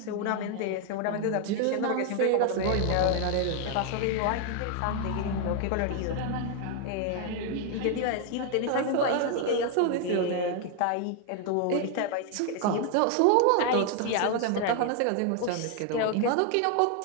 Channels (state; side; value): different; both; correlation 0.00